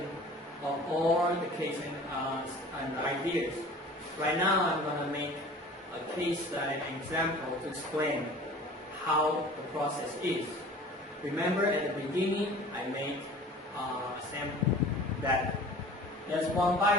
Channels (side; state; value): both; normal; correlation 0.44